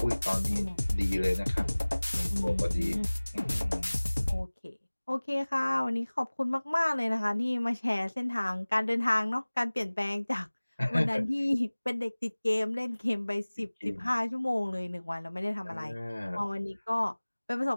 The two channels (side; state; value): both; inverted; correlation -1.00